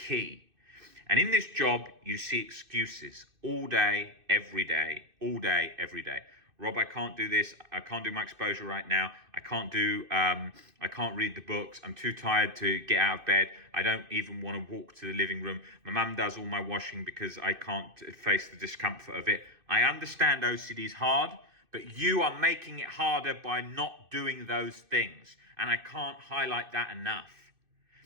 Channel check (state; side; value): late; left; 2.6 ms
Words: And in this job, you see excuses all day, every day, all day, every day. Rob, I can't do this. I can't do my exposure right now. I can't read the books. I'm too tired to get out of bed. I don't even want to walk to the living room. My mum does all my washing because I can't face the discomfort of it. I understand OCD is hard, but you are making it harder by not doing those things. And I can't highlight that enough.